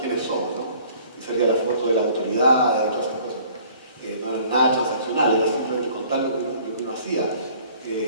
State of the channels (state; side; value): inverted; both; correlation -0.54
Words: somos, ¿no? Y salía la foto de la autoridad y todas esas cosas. No era nada transaccional, era simplemente contar lo que uno hacía.